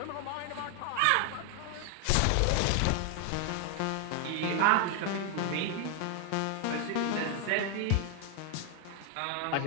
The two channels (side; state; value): both; different; correlation 0.00